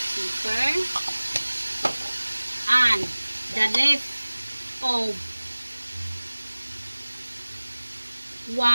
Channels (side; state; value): both; inverted; correlation -1.00